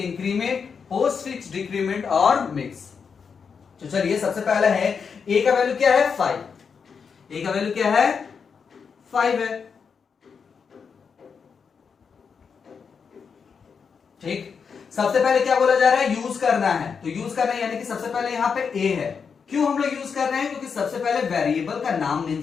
post fix decrement और मिक्स। तो चलिए सबसे पहले है a का वैल्यू क्या है 5, a का वैल्यू क्या है 5 है। ठीक, सबसे पहले क्या बोला जा रहा है यूज करना है, तो यूज करना है यानी कि सबसे पहले यहां पे a है। क्यों हम लोग यूज कर रहे हैं, क्योंकि सबसे पहले वेरिएबल का नाम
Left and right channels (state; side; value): quieter; right; 6.1 dB